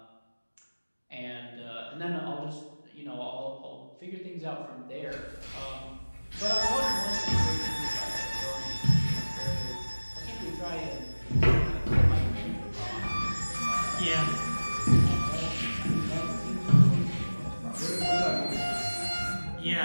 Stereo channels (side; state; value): both; inverted; correlation -1.00